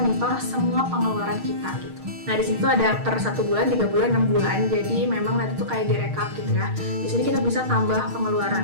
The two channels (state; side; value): late; left; 6.5 ms